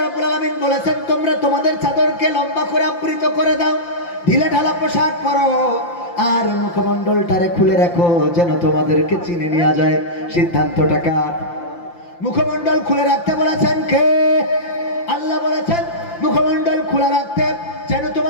আলামিন বলেছেন তোমরা তোমাদের চাদরকে লম্বা করে আবৃত করে দাও, ঢিলে ঢালা পোশাক পরো, আর মুখমণ্ডলটারে খুলে রাখো যেন তোমাদেরকে চিনে নেওয়া যায়। সিদ্ধান্তটা কার? মুখমণ্ডল খুলে রাখতে বলেছেন কে? আল্লাহ বলেছেন মুখমণ্ডল খোলা রাখতে যেন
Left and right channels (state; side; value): late; right; 5.8 ms